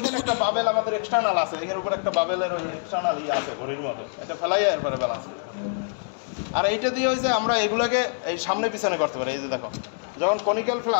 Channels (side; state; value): right; silent; 62 dB below the other